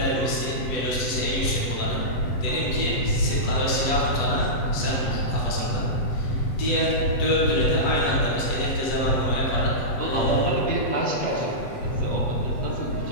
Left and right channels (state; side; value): late; right; 8.2 ms